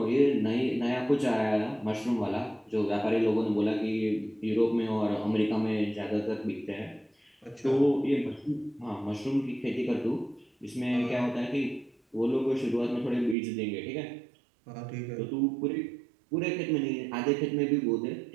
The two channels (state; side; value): drops out; left; at 13.4 s